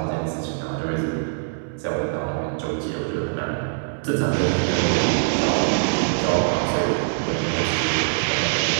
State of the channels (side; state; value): left; silent; 63 dB below the other